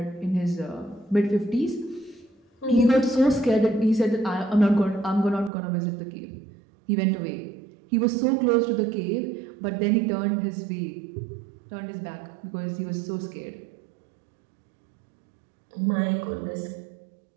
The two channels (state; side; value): drops out; left; at 5.5 s